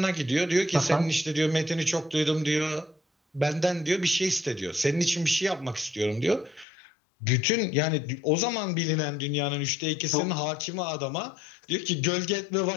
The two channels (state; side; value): drops out; right; at 6.7 s